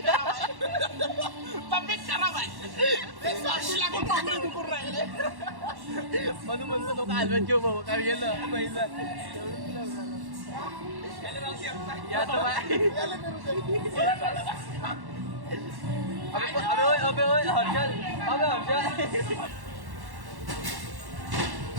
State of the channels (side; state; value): left; late; 1.1 ms